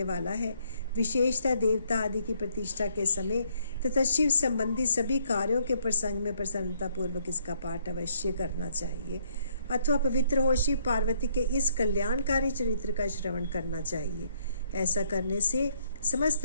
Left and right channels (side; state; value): both; inverted; correlation -0.69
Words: वाला है। विशेषतः देवता आदि की प्रतिष्ठा के समय तथा शिव संबंधी सभी कार्यों के प्रसंग में प्रसन्नता पूर्वक इसका पाठ अवश्य करना चाहिए अथवा पवित्र हो शिव पार्वती के इस कल्याणकारी चरित्र का श्रवण करना चाहिए। ऐसा करने से समस्त